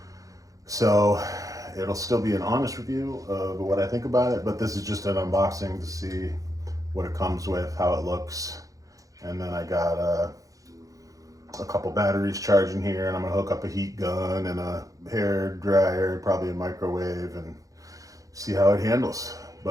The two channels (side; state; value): left; late; 0.17 ms